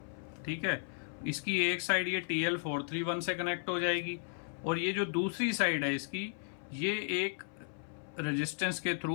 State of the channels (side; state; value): right; silent; 54 dB below the other